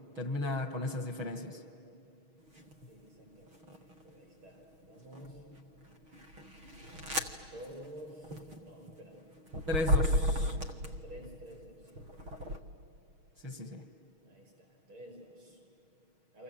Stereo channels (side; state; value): left; late; 6.3 ms